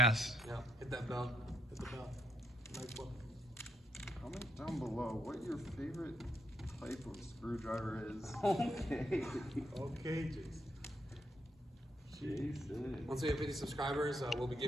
Yeah, hit that bell. Hit the bell. Nice one. Comment down below what your favorite type of screwdriver is. Okay. Okay, Jason. Jason. Once we have 50 subscribers, we'll be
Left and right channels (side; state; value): both; normal; correlation 0.77